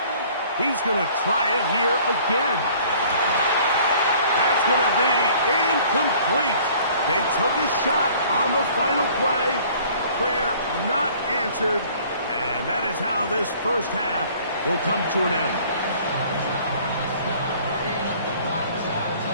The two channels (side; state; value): both; inverted; correlation -0.53